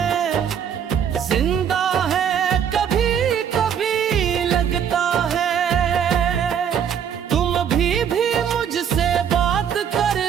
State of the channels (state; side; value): quieter; left; 8.3 dB